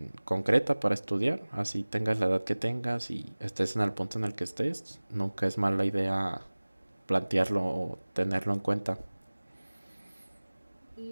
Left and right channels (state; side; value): inverted; both; correlation -1.00